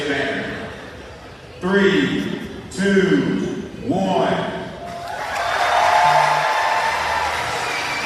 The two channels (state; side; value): identical; both; correlation 1.00